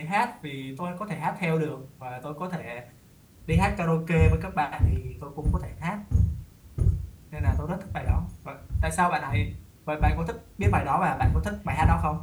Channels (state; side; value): identical; both; correlation 1.00